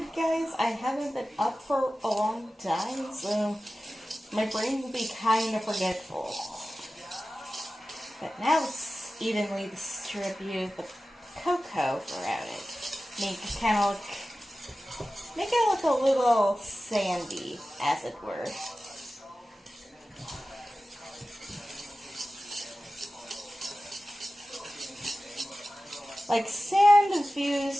guys. I haven't been up for a long time, so my brain will be kind of forgetful. But now let's evenly distribute the cocoa throughout it. Make it look a little sandy, as it were. Like sand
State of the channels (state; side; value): normal; both; correlation 0.95